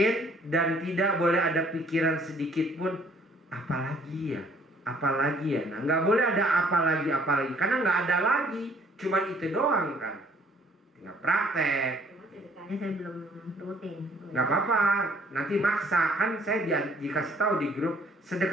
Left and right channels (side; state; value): both; normal; correlation 0.61